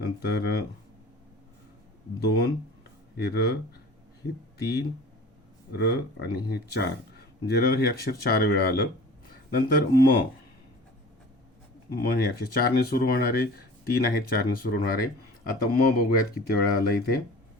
2 हे र, हे 3 र आणि हे 4, म्हणजे र हे अक्षर 4 वेळा आलं. नंतर म हे अक्षर 4 ने सुरू होणारे, 3 आहेत 4 ने सुरू होणारे. आता म बघूयात किती वेळा आलं इथे.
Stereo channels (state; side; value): normal; both; correlation 0.42